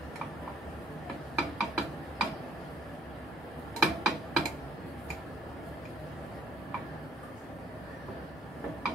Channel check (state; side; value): normal; both; correlation 0.64